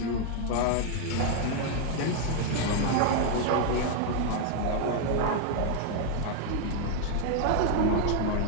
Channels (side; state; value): both; different; correlation 0.01